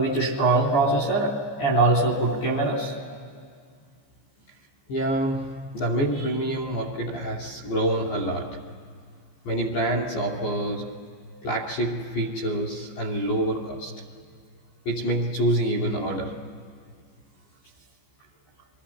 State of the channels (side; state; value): right; late; 15 ms